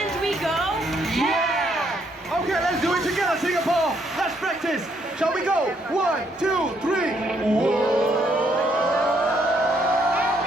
we go. Yeah! Okay, let's do it together, Singapore. Let's practice. Shall we go? 1, 2, 3. And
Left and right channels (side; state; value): both; normal; correlation 0.71